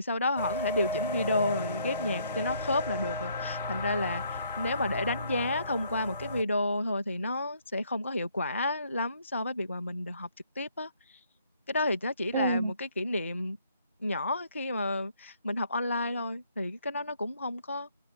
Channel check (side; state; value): both; inverted; correlation -0.67